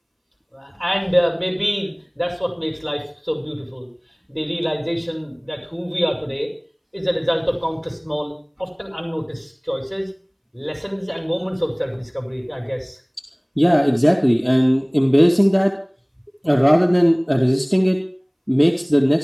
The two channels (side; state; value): both; identical; correlation 1.00